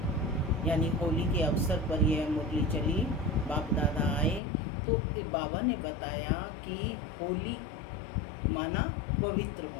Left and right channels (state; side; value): drops out; right; at 4.4 s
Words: यानी होली के अवसर पर यह मुरली चली। बाप दादा आए तो बाबा ने बताया कि होली माना पवित्र